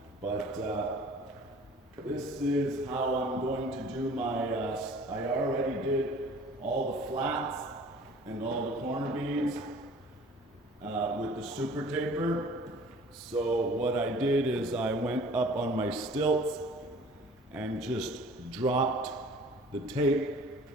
but this is how I'm going to do my, I already did all the flats and all the corner beads with the super taper. So what I did is I went up on my stilts and just dropped the tape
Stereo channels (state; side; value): normal; both; correlation 0.48